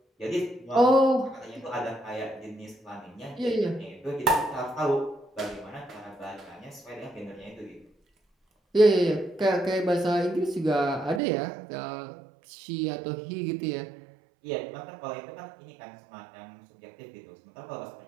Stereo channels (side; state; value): left; drops out; at 11.2 s